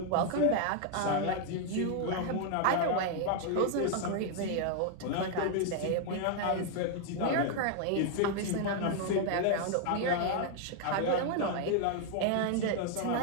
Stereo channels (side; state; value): both; different; correlation 0.00